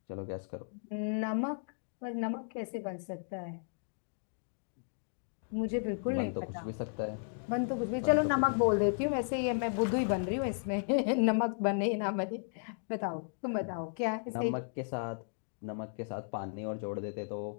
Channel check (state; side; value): silent; right; digital silence